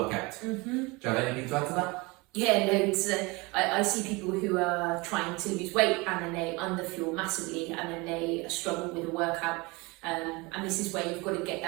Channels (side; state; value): left; quieter; 25.3 dB